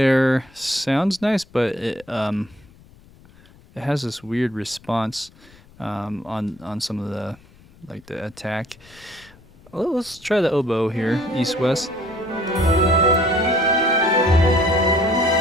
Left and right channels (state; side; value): noise; left; rumble, 26 dB below the sound